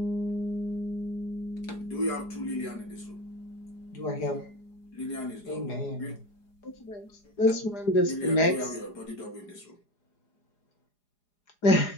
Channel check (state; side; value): late; right; 4.9 ms